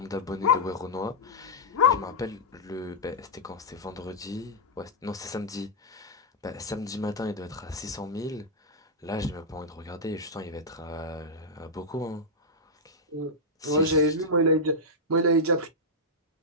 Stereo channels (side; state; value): both; normal; correlation -0.07